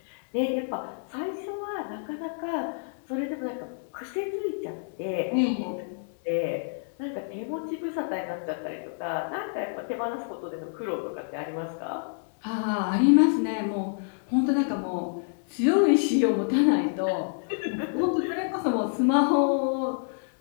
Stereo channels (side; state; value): right; silent; digital silence